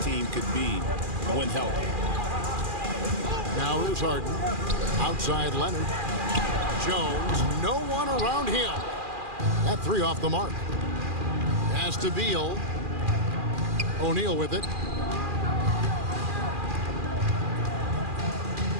team could be when healthy. Now here's Harden. Outside Leonard. Jones, no one around him. That three off the mark. Pass to Beal. O'Neal with it.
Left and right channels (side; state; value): left; late; 2.4 ms